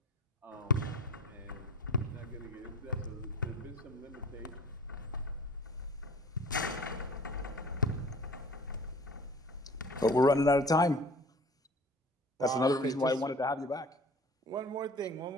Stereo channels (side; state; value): both; normal; correlation 0.45